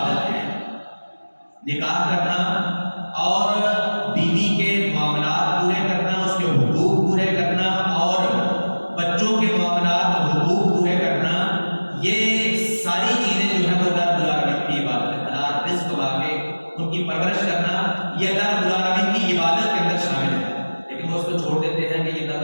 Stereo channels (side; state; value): both; inverted; correlation -1.00